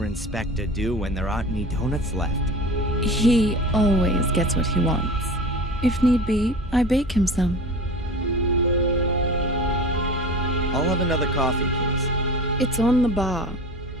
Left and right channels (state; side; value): normal; both; correlation 0.35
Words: inspector do when there aren't any donuts left? He always gets what he wants. If need be, I bake him some. I'll have another coffee, please. It's on the bar.